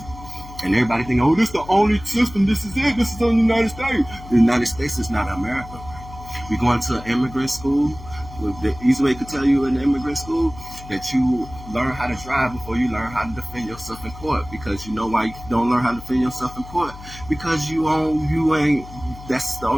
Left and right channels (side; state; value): left; noise; hum, 16 dB below the sound